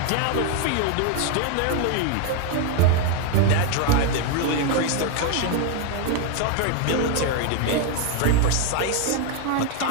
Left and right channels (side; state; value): both; different; correlation 0.01